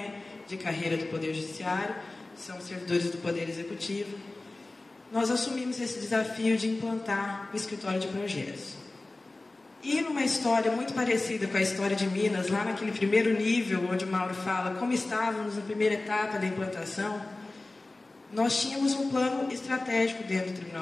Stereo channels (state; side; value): quieter; right; 3.0 dB